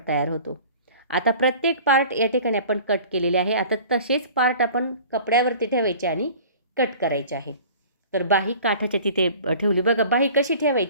तयार होतो. आता प्रत्येक पार्ट या ठिकाणी आपण कट केलेले आहे. आता तसेच पार्ट आपण कपड्यावरती ठेवायचे आणि कट करायचे आहे. तर बाही काठाच्या तिथे ठेवली. बघा, बाही कशी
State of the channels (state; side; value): inverted; both; correlation -0.44